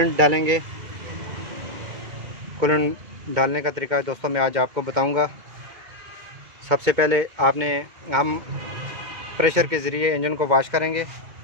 डालेंगे। कूलेंट डालने का तरीका दोस्तों मैं आज आपको बताऊंगा। सबसे पहले हम प्रेशर के ज़रिए इंजन को वाश करेंगे।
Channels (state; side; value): late; left; 2.2 ms